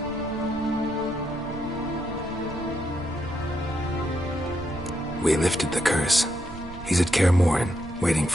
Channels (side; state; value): right; noise; rumble, 15 dB below the sound